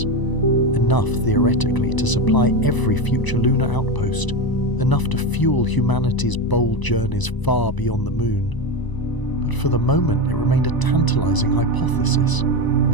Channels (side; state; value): right; late; 1.0 ms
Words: Enough, theoretically, to supply every future lunar outpost, enough to fuel humanity's bold journeys far beyond the moon. But for the moment, it remained a tantalizing hypothesis,